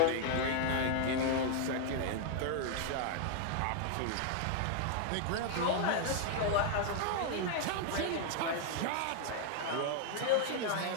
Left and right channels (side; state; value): both; different; correlation 0.00